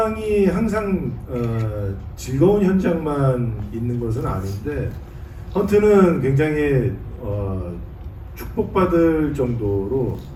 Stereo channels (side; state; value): both; identical; correlation 1.00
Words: 항상 즐거운 현장만 있는 것은 아닌데 헌트는 굉장히 축복받을 정도로